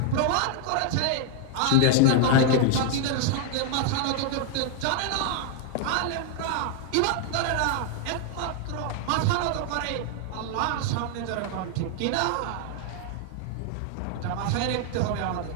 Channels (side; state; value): both; different; correlation 0.00